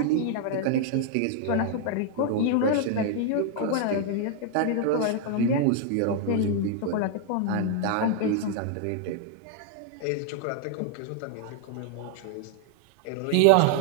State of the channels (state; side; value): different; both; correlation 0.00